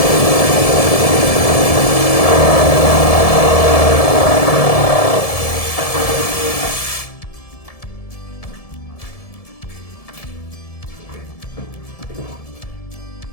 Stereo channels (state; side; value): late; right; 1.7 ms